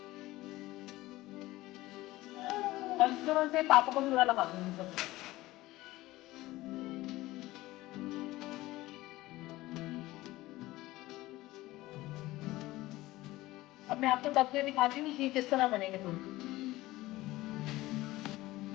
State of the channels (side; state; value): right; quieter; 17.9 dB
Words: और इस तरह से पापा को पूरा लगा दूंगी सब। अब मैं आपको तब से दिखाती हूँ कि किस तरह बनेंगे तो